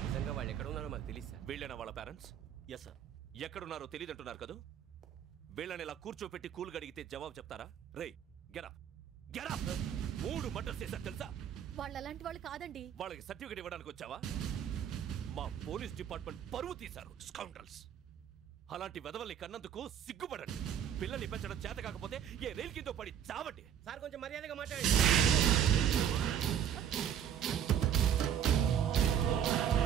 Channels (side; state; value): left; quieter; 9.2 dB